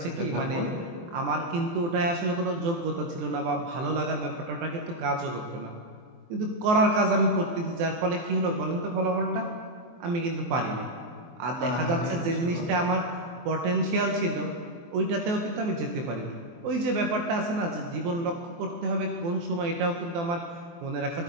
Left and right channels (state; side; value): late; left; 23 ms